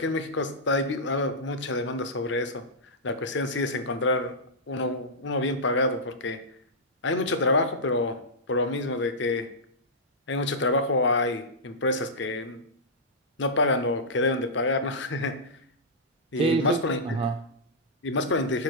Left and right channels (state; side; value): normal; both; correlation -0.13